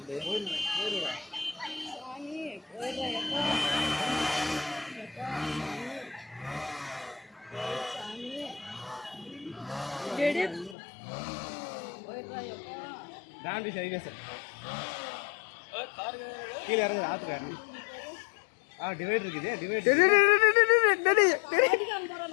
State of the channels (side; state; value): right; drops out; at 10.8 s